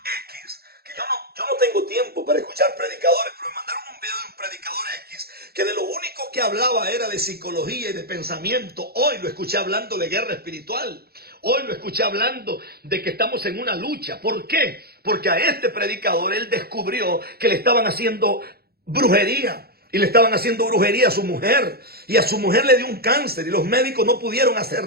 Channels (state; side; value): late; left; 0.45 ms